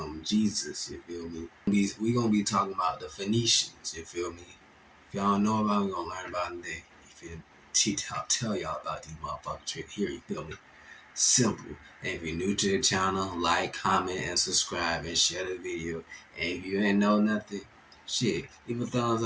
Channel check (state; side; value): identical; both; correlation 1.00